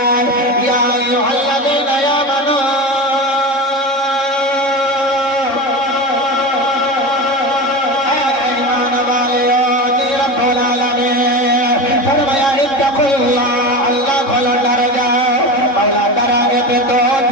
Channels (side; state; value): right; late; 3.7 ms